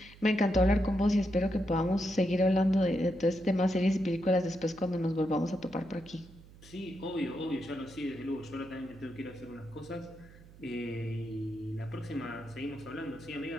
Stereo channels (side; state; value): right; noise; hum, 21 dB below the sound